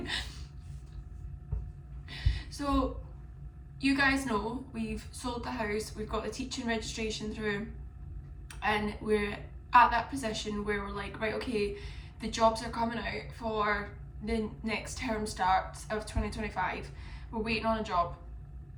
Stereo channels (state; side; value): identical; both; correlation 1.00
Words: So, you guys know we've sold the house, we've got the teaching registration through, and we're at that position where we're like, right, okay, the jobs are coming out for the next term start of 2025. We're waiting on a job.